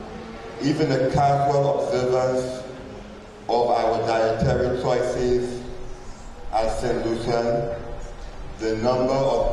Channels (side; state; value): both; identical; correlation 1.00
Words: even a casual observance of our dietary choices at St. Lucian, the number